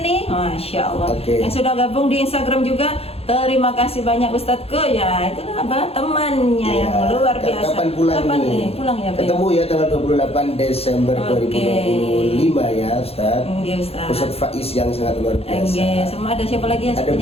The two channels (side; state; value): right; late; 0.29 ms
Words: ini, Masya Allah. Yang sudah gabung di Instagram juga, terima kasih banyak Ustadzku ya. Itu Abah temannya yang luar biasa. Kapan pulang nih? Pulang ya. Ketemu ya tanggal 28 Desember 2025 ya Ustadz. Ustadz Faiz yang sangat luar biasa. Semua ada siapa lagi yang ada